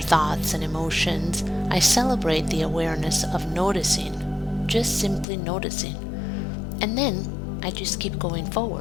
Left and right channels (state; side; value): drops out; right; at 5.2 s